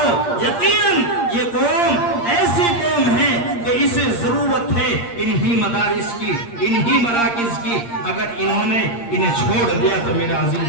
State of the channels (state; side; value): late; right; 8.6 ms